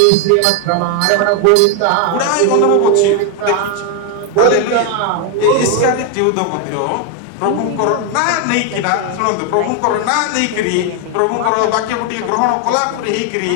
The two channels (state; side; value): different; both; correlation 0.01